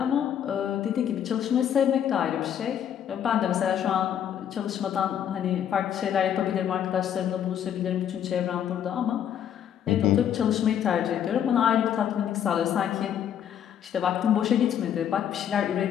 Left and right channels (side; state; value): right; quieter; 9.5 dB